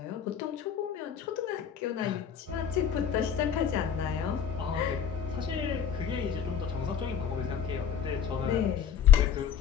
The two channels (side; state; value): right; quieter; 8.1 dB